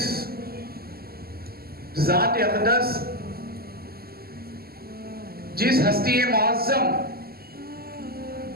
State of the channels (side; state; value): left; late; 0.45 ms